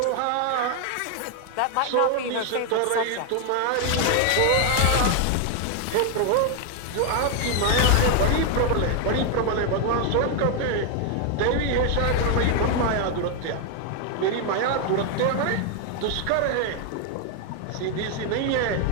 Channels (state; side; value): different; both; correlation 0.00